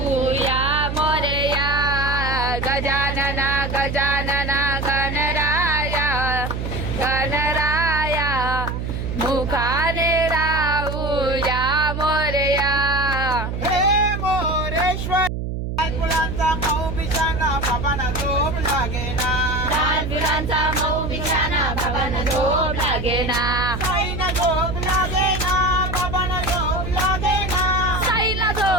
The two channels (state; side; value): noise; right; hum, 4 dB below the sound